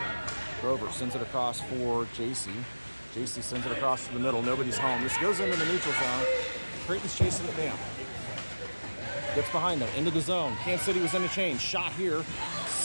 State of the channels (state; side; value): inverted; both; correlation -1.00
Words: Grover sends it across for JC. JC sends it across to the middle. Nobody's home. This goes into the neutral zone. Creighton's chasing it down. Gets behind them, into the zone. Kansas City was in a change. Shot here.